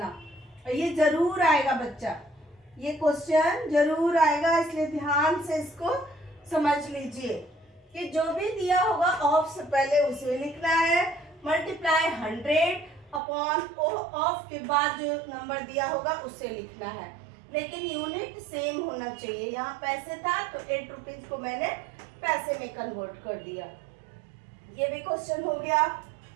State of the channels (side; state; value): left; drops out; at 13.2 s